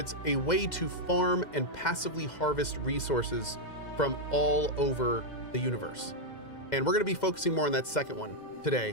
a way to farm and passively harvest resources from all over the universe. And we're gonna be focusing more on that second one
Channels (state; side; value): late; right; 2.1 ms